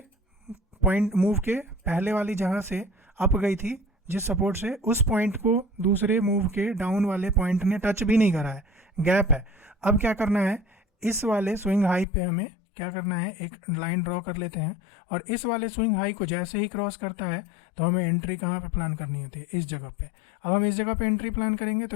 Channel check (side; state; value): right; drops out; at 12.1 s